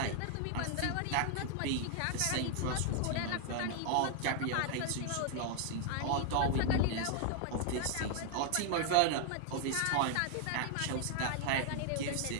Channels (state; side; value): different; both; correlation 0.00